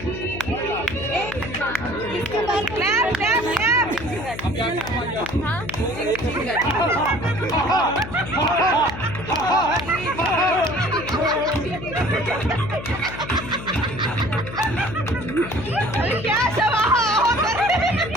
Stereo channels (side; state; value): left; noise; hum, 11 dB below the sound